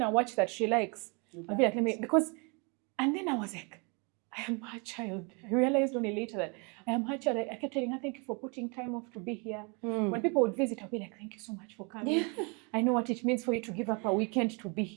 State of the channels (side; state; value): left; quieter; 32.5 dB